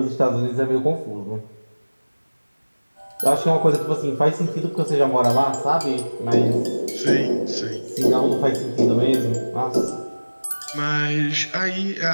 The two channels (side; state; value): both; inverted; correlation -1.00